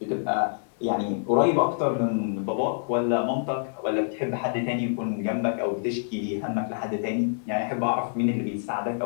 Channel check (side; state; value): right; silent; digital silence